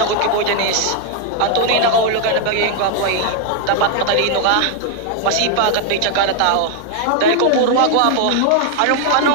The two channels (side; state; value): both; different; correlation 0.00